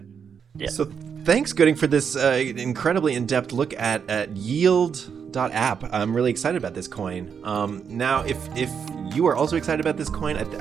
Yeah. So thanks, Gooding, for this incredibly in-depth look at Yield.App. I'm really excited about this coin. Now, if you are also excited about this coin,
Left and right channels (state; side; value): quieter; left; 7.0 dB